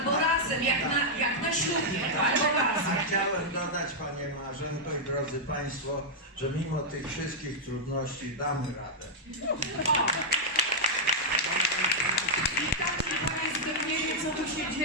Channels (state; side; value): normal; both; correlation -0.05